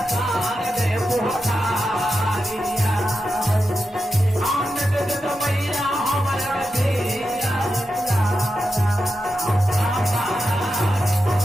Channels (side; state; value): right; noise; hum, 28 dB below the sound